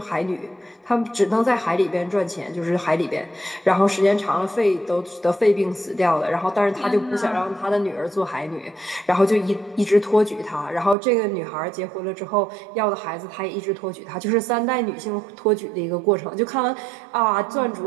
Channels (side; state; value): left; drops out; at 11.0 s